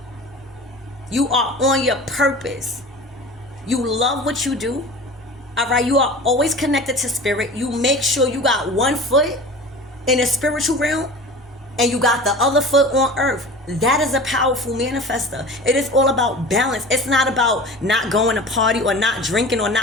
You are on your purpose. You love what you do. All right. You are always connected to spirit. You make sure you got one foot in the spiritual realm and you got the other foot on earth. That is a powerful manifester. It is all about balance. It's not about not going to party or not drinking or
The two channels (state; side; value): normal; both; correlation 0.37